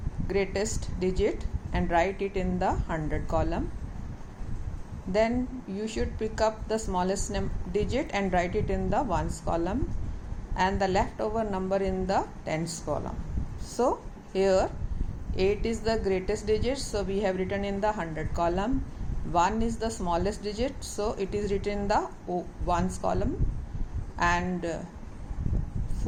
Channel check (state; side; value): identical; both; correlation 1.00